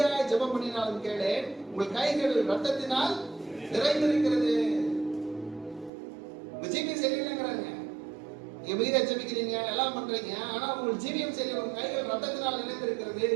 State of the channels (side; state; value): left; drops out; at 5.9 s